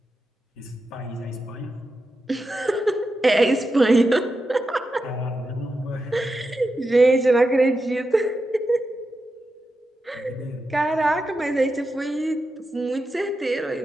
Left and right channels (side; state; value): both; normal; correlation 0.88